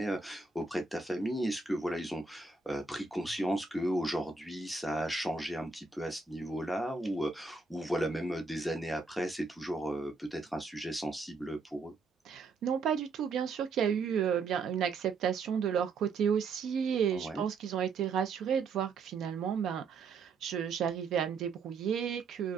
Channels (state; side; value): quieter; left; 4.4 dB